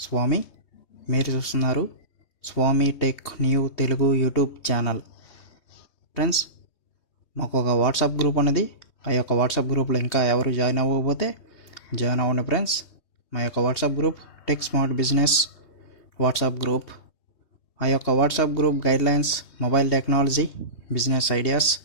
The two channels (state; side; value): late; right; 3.2 ms